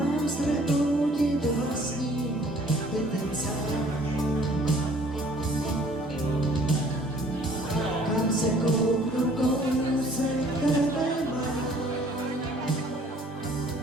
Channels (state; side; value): normal; both; correlation 0.56